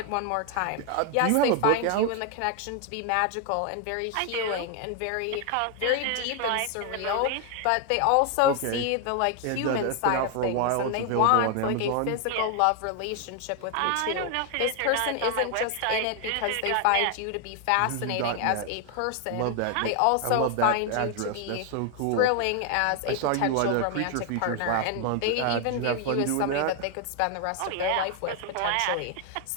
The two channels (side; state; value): both; different; correlation 0.00